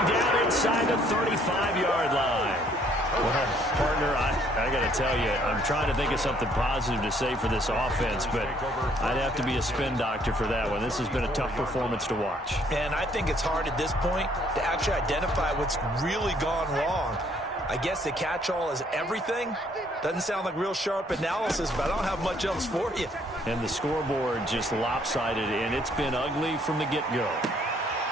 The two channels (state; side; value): normal; both; correlation 0.64